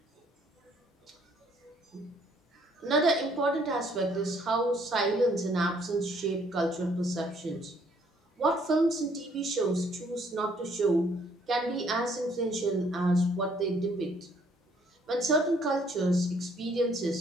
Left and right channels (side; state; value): both; normal; correlation 0.64